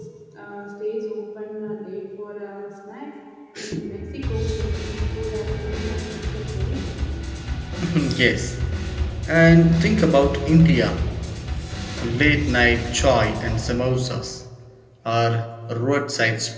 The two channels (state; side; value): identical; both; correlation 1.00